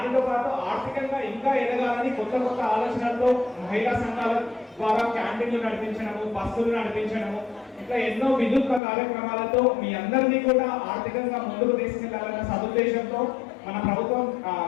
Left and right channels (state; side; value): drops out; right; at 8.8 s